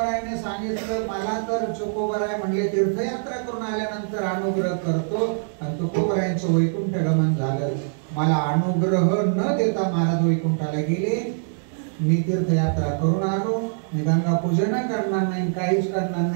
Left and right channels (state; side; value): silent; left; digital silence